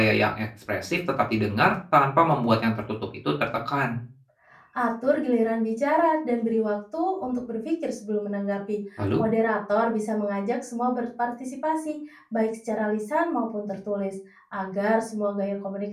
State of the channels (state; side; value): identical; both; correlation 1.00